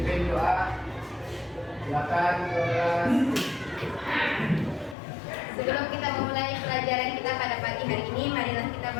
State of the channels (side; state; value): right; drops out; at 5.0 s